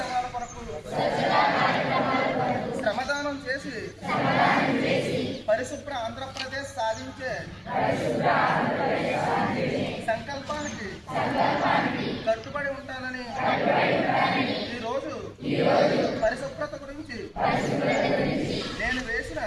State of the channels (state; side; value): identical; both; correlation 1.00